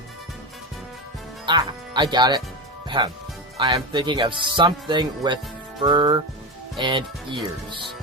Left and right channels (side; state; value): both; normal; correlation 0.17